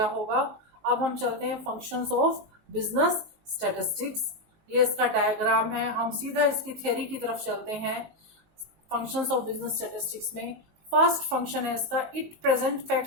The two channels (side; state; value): left; late; 19 ms